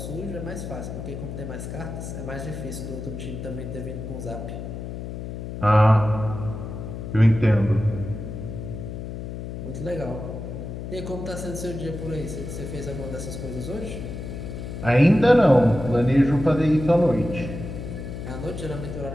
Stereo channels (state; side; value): noise; left; hum, 7 dB below the sound